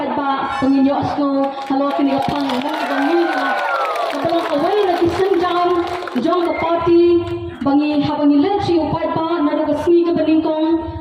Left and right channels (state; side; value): identical; both; correlation 1.00